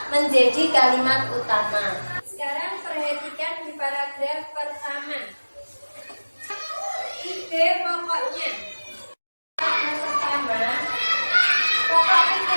menjadi kalimat utama. Sekarang perhatikan di paragraf pertama. Ide pokoknya. Yang pertama, pokok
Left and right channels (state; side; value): inverted; both; correlation -1.00